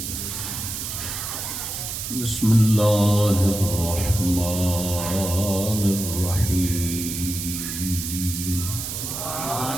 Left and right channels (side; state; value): right; noise; hiss, 5 dB below the sound